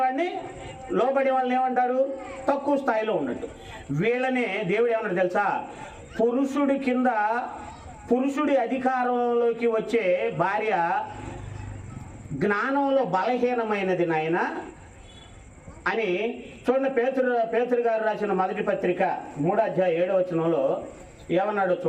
వాళ్ళని ఏమంటారు? తక్కువ స్థాయిలో ఉన్నట్టు. వీళ్ళనే దేవుడు ఏమన్నాడు తెలుసా? పురుషుడి కింద, పురుషుడి అధికారంలోకి వచ్చే భార్య జ్ఞానంలో బలహీనమైనది నాయన అని. చూడండి, పేతురు గారు రాసిన మొదటి పత్రిక 3:7 ఏమన్నాడో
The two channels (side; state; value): both; identical; correlation 1.00